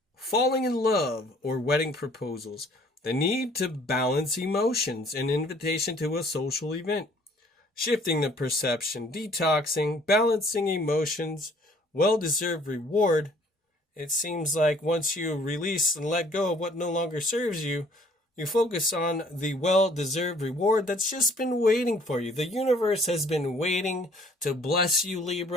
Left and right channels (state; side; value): normal; both; correlation 0.57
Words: falling in love, or wedding proposals. The need to balance emotions, an invitation to a social event. Shifting the perception, detoxing, balancing emotions, well-deserved reward. It seems like once you release and let go of what no longer serves you, you focus on the well-deserved reward that's just been waiting for you. The universe has been waiting to bless you,